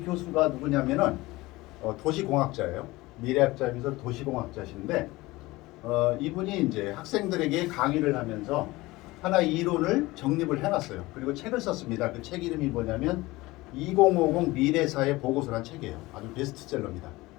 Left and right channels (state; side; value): quieter; right; 20.2 dB